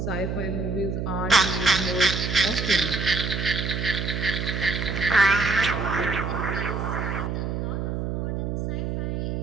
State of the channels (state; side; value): noise; right; hum, 2 dB below the sound